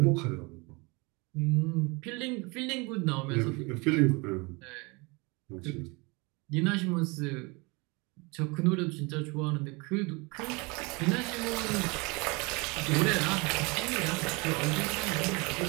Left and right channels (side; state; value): left; quieter; 27.5 dB